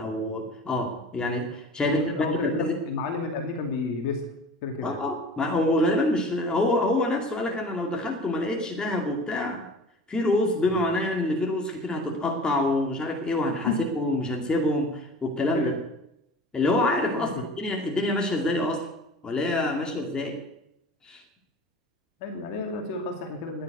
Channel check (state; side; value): normal; both; correlation 0.41